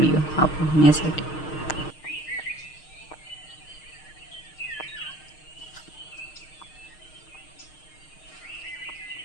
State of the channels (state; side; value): late; right; 6.4 ms